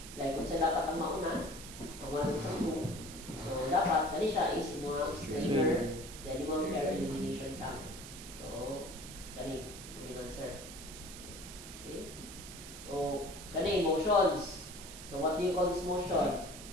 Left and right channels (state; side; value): noise; right; hiss, 12 dB below the sound